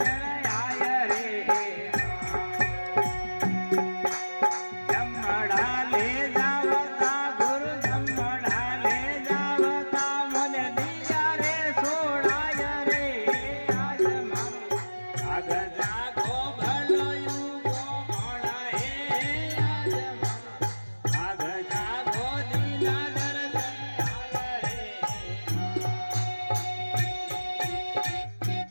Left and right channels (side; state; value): both; inverted; correlation -1.00